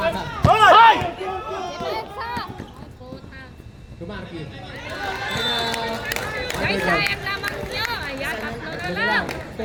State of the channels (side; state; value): both; identical; correlation 1.00